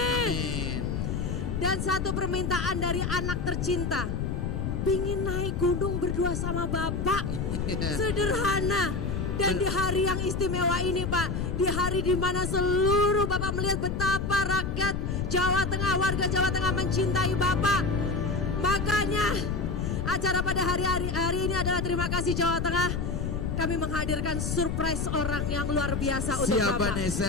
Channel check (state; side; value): noise; left; rumble, 2 dB below the sound